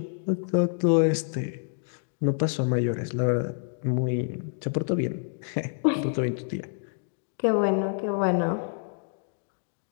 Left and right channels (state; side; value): silent; right; digital silence